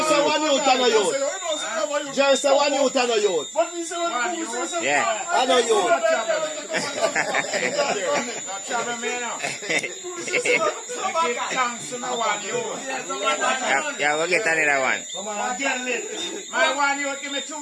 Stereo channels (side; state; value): both; identical; correlation 1.00